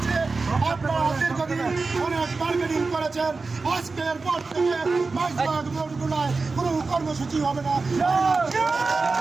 আপনারা দীর্ঘদিন অনেক বার্গেনিং করেছেন, আজকের পর থেকে মাঝবাগ মোড়গুলোয় কোনো কর্মসূচি হবে না।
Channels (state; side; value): quieter; left; 4.0 dB